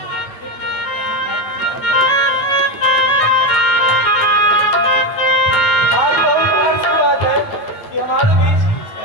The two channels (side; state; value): right; late; 9.2 ms